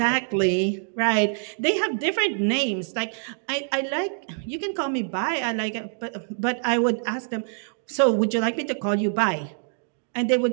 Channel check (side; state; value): left; silent; digital silence